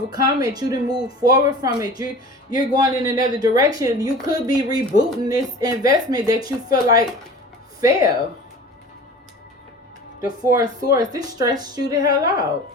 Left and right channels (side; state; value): both; normal; correlation 0.39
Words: it. You done moved forward from it. You're going in another direction. You could be rebooting this investment that you feel like failed. The Four of Swords, this stressed you the hell out.